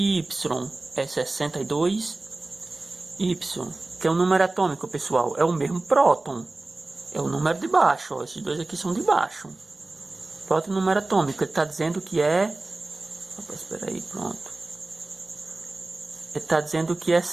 Y é 62. Y, que é o número atômico, pessoal. É o mesmo próton. É o número de baixo. Ó. Esses dois aqui são de baixo. Próton número atômico. Ele está dizendo que é... Opa, espera aí, pronto. Ele está dizendo que é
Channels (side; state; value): left; quieter; 3.1 dB